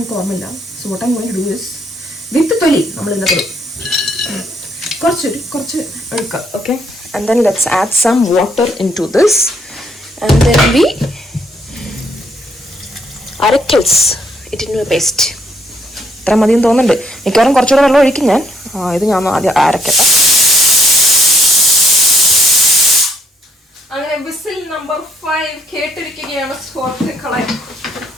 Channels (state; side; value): normal; both; correlation 0.69